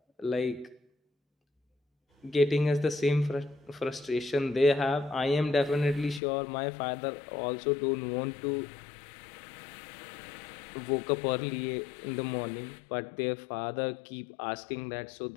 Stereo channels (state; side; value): drops out; right; at 6.2 s